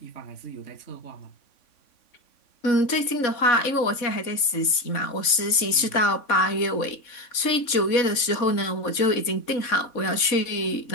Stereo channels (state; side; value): late; right; 3.6 ms